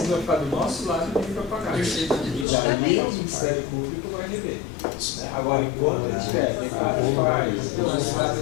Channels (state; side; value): drops out; right; at 2.5 s